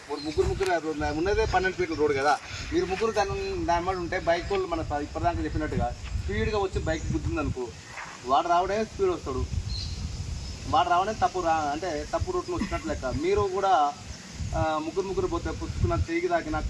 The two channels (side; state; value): both; identical; correlation 1.00